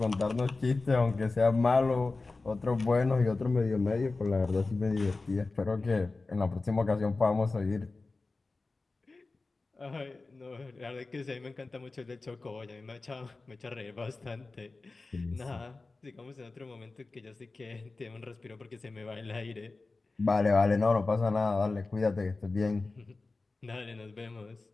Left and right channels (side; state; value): right; quieter; 3.6 dB